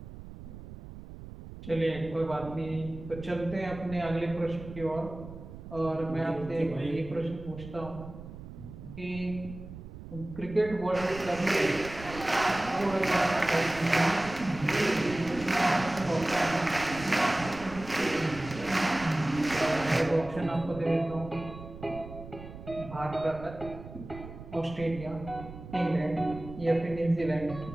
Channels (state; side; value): noise; right; rumble, 13 dB below the sound